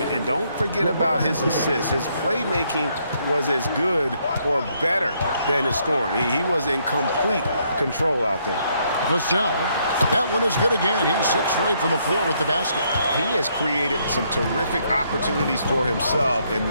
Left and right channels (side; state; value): both; inverted; correlation -0.72